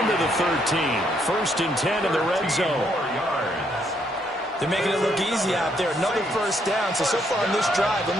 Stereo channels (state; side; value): normal; both; correlation 0.72